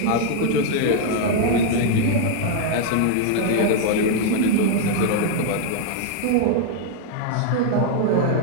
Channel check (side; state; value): both; different; correlation 0.00